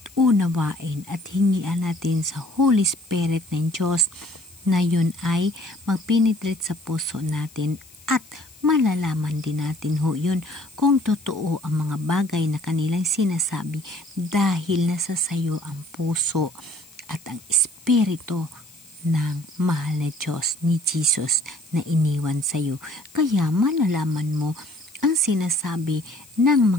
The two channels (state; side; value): noise; left; hiss, 24 dB below the sound